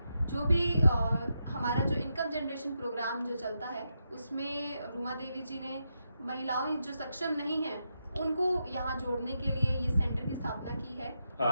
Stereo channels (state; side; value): inverted; both; correlation -0.85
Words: जो भी हमारा जो इनकम जनरेशन प्रोग्राम जो चलता है, उसमें रूमा देवी जी ने महिलाओं जो सक्षम नहीं हैं उनको यहाँ जोड़ने के लिए ये सेंटर की स्थापना की